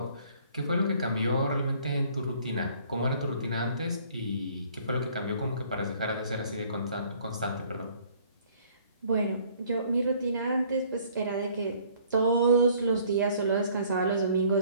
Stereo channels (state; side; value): inverted; both; correlation -0.58